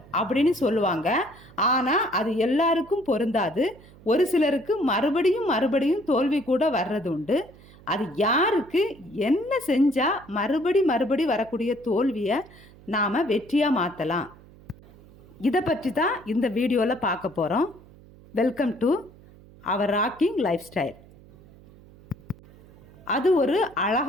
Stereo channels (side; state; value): right; noise; hum, 23 dB below the sound